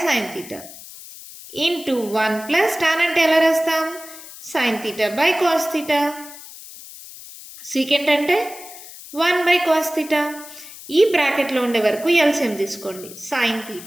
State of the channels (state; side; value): noise; left; hiss, 16 dB below the sound